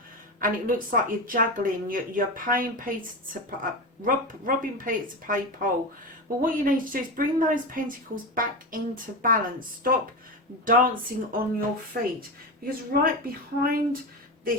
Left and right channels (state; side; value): normal; both; correlation 0.20